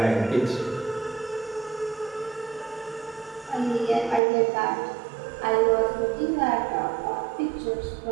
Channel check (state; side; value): drops out; left; at 4.2 s